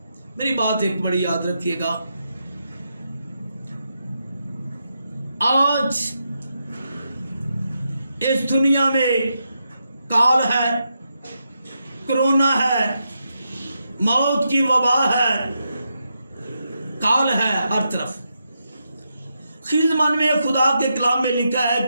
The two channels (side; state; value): both; inverted; correlation -0.84